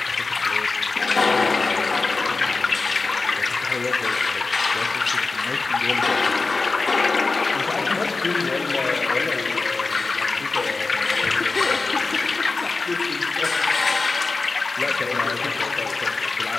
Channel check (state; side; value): quieter; right; 3.8 dB